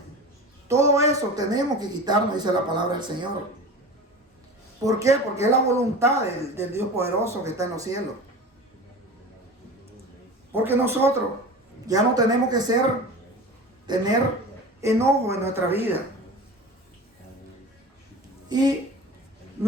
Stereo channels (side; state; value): both; normal; correlation 0.33